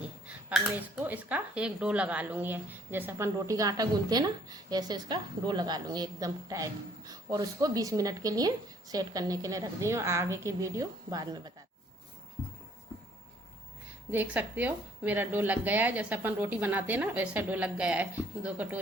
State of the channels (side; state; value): both; normal; correlation 0.62